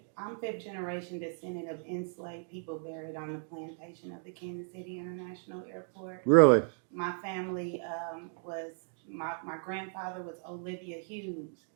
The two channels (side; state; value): left; silent; 54 dB below the other